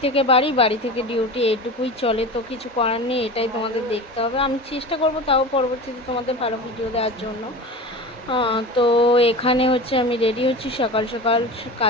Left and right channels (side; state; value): both; normal; correlation 0.31